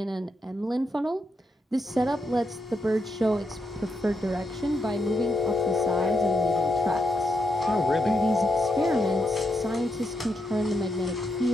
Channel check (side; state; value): both; normal; correlation 0.82